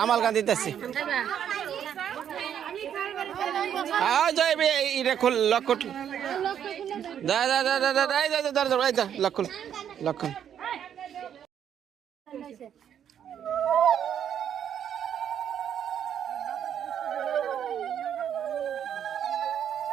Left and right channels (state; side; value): quieter; left; 9.2 dB